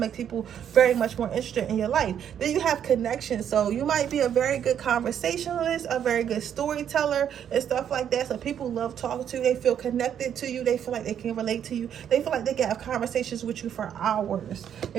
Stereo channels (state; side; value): quieter; left; 9.1 dB